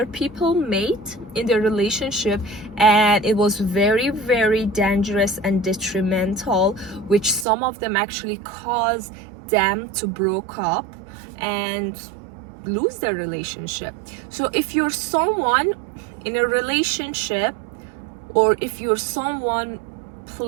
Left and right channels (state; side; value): drops out; left; at 7.5 s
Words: people made in their relationship, and it was very dangerous and detrimental, which some of them actually caused them to broke up and lose their relationship. So if you're someone in a relationship, or if you're someone